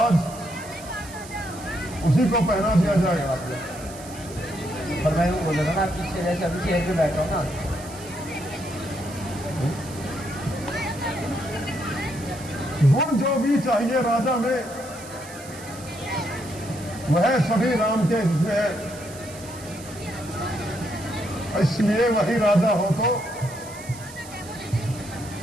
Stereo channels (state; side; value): noise; right; hiss, 17 dB below the sound